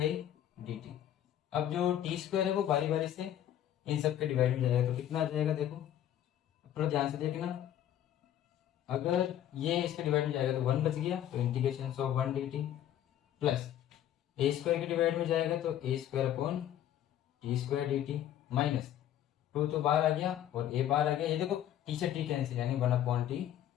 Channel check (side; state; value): right; quieter; 11.3 dB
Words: dt। अब जो t² है वो बारी बारी से इन सब के डिवाइड में जाएगा, तो कितना आ जाएगा देखो थोड़ा ध्यान से देखना, अगर ये इसके डिवाइड में जाएगा तो 1 बच गया, तो integration of 1 dt, plus a² के डिवाइड में जाएगा तो a² t² dt, माइनस 2 तो बाहर आ गया और a बाहर आ गया, ये देखो t से t कैंसिल, यानी 1/t